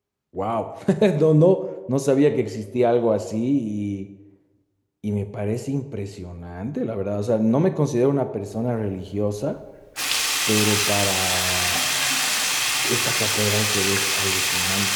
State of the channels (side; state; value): both; identical; correlation 1.00